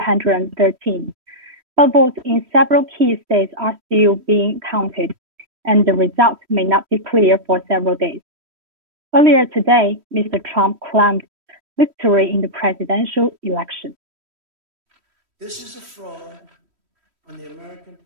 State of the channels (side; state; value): left; late; 3.1 ms